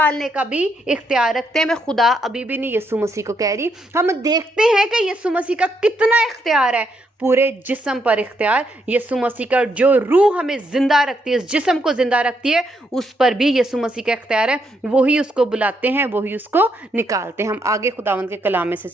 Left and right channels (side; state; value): both; normal; correlation 0.77